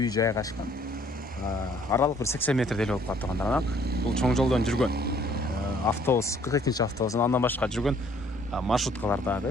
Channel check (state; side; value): normal; both; correlation 0.61